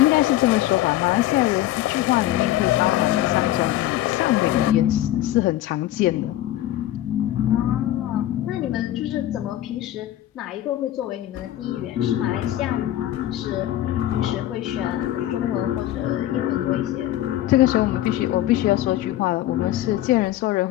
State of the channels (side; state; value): right; quieter; 14.0 dB